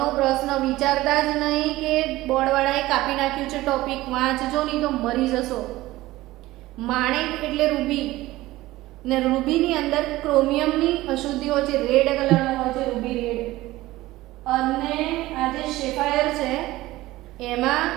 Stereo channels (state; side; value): quieter; left; 17.6 dB